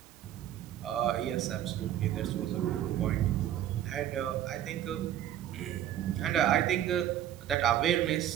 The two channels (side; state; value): left; quieter; 11.4 dB